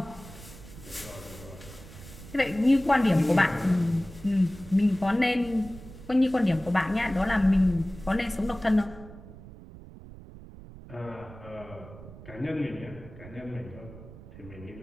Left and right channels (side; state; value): right; noise; rumble, 17 dB below the sound